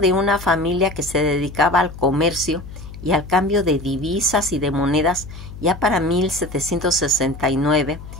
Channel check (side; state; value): left; noise; hum, 13 dB below the sound